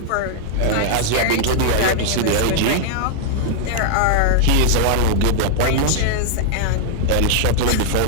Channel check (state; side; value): different; both; correlation -0.01